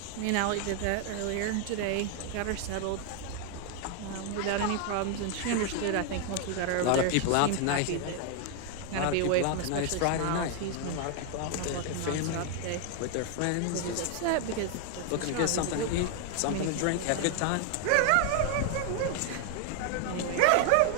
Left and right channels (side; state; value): both; different; correlation 0.00